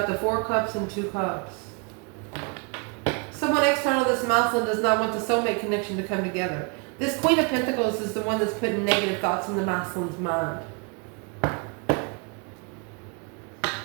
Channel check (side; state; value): left; quieter; 33.0 dB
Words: the 4 Cups and 2 Cups. Someone external to this masculine does not want the soulmate connection to come together. This Queen of Pentacles is the one that's putting negative thoughts in the masculine's mind.